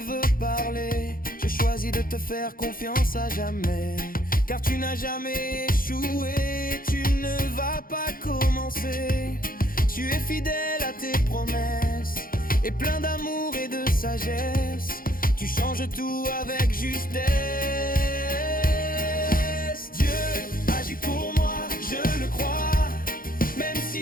veut parler, je choisis de te faire confiance à jamais, car tu n'as jamais échoué, tu ne vas pas commencer. Tu es fidèle à tes promesses et plein d'amour et de sagesse. Tu changes tout avec justesse. Dieu agit pour moi, je le crois, même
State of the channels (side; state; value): right; late; 0.42 ms